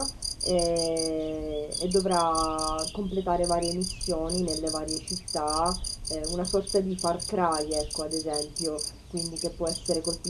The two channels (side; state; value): both; identical; correlation 1.00